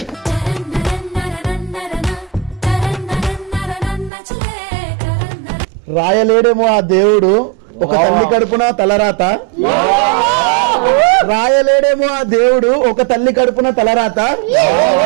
రాయలేడేమో ఆ దేవుడు ఒక తల్లి కడుపున తలరాత. రాయలేడేమో ఆ దేవుడు ఒక తల్లి కడుపున తలరాత.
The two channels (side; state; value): left; drops out; at 4.1 s